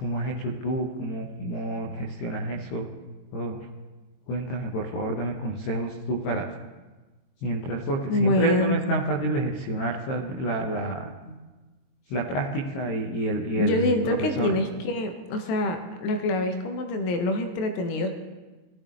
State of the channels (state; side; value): late; right; 23 ms